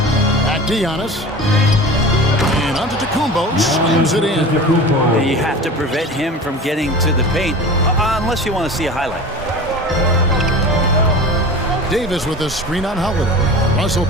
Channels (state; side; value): normal; both; correlation 0.35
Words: Back to Giannis. And onto Tacumbo. Slams it in. You have to prevent him from getting to the paint, unless you want to see a highlight. Davis with a screen on Holiday. Russell